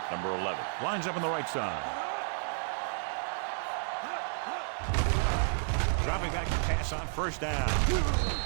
Number 11 lines up on the right side. Dropping back to pass on first down.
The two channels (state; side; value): silent; left; 57 dB below the other